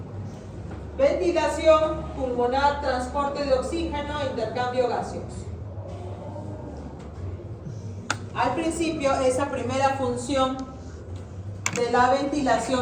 Ventilación pulmonar, transporte de oxígeno, intercambio gaseoso. Al principio, esa primera función de la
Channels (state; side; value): identical; both; correlation 1.00